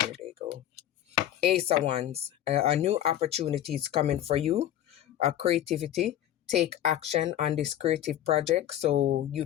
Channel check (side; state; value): right; quieter; 11.9 dB